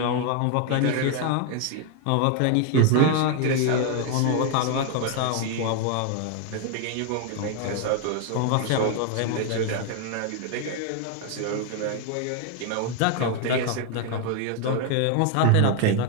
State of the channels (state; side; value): different; both; correlation 0.01